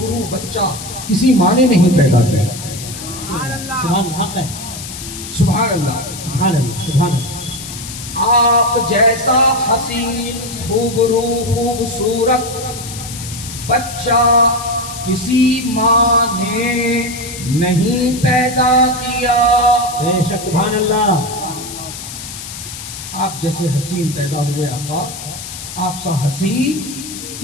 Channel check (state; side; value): noise; left; hiss, 10 dB below the sound